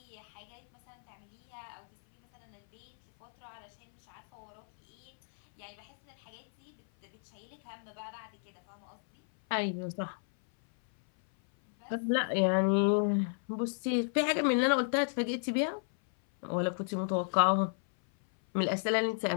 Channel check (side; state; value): right; silent; 56 dB below the other